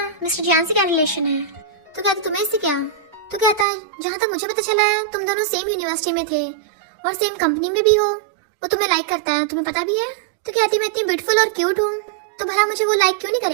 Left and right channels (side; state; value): left; drops out; at 3.7 s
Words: मिस्टर जियान से क्या रिलेशन है? तो कहता तुम्हें इससे क्या? तो कहता है जहाँ तक मुझे पता चला है तुम दोनों सेम यूनिवर्सिटी में थे और सेम कंपनी में भी हो, वो तुम्हें लाइक करता है, तुम्हें पता भी है? तो कहती मैं इतनी ब्यूटीफुल और क्यूट हूँ, तो भला मुझे वो लाइक क्यों नहीं